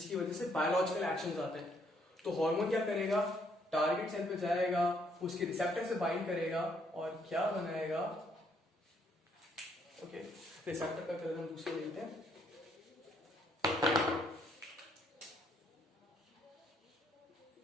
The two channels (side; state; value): both; normal; correlation 0.69